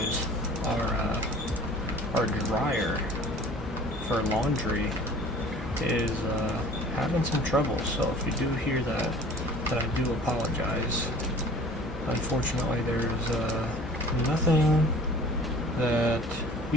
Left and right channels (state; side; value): normal; both; correlation 0.45